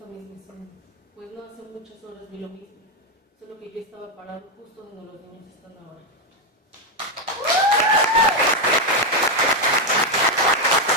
misma escena, pues no hace muchas horas vi lo mismo, solo que yo estaba parado justo donde los niños están ahora.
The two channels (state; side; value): normal; both; correlation 0.04